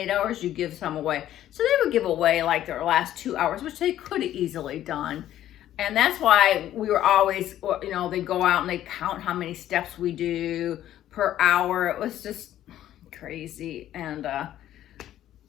8 hours, you give some away. So they would give away like their last 2 hours, which they could have easily done. And that's why we were always, you know, they go out and they count how many steps we do per hour. It was just crazy. And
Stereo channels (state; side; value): quieter; right; 12.4 dB